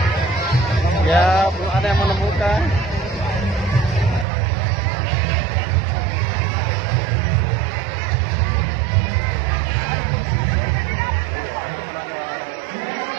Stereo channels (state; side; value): drops out; left; at 4.2 s